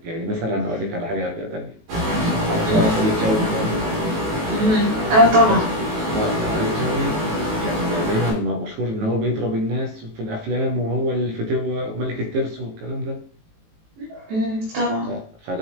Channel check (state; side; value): late; left; 18 ms